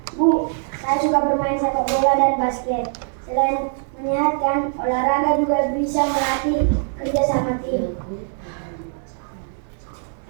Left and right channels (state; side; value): silent; left; digital silence